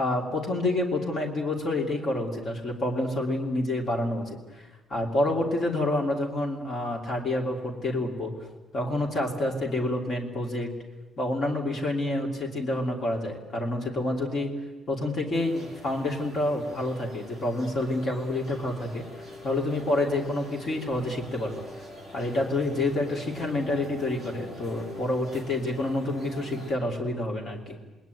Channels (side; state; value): both; normal; correlation 0.69